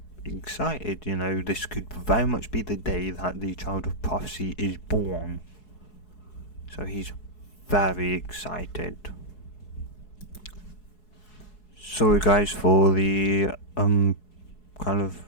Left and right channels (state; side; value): late; right; 4.7 ms